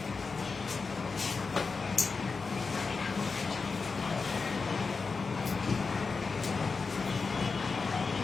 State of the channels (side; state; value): right; quieter; 4.6 dB